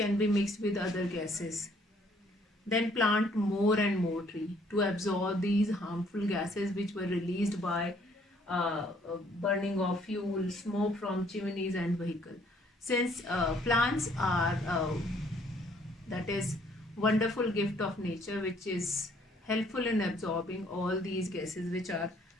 be mixed with other gases. Then plant more and more tree to absorb these harmful gases which were released by burning of fuel, smoke from chimneys and vehicle. Since plants are that is wonderful gift of nature which is helpful in absorbing all these gases which are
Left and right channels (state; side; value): normal; both; correlation 0.63